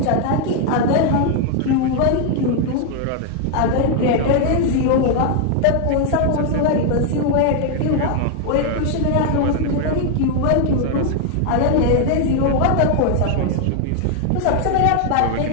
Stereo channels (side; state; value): both; different; correlation 0.00